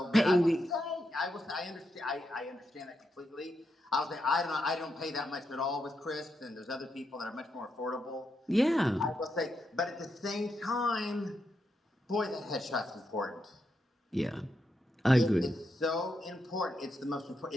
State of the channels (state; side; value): normal; both; correlation 0.83